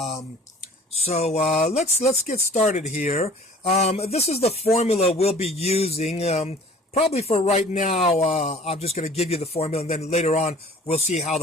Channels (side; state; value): both; normal; correlation 0.49